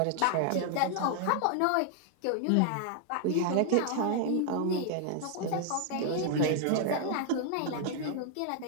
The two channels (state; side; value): different; both; correlation 0.00